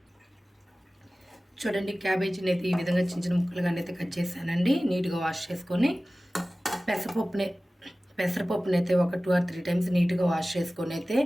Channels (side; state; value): both; normal; correlation 0.97